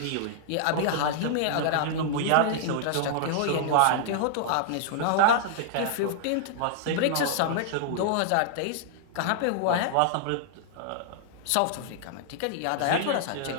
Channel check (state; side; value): different; both; correlation -0.01